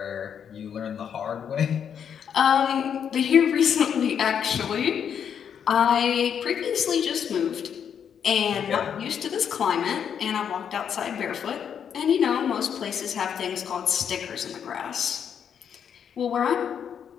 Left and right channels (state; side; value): quieter; right; 8.0 dB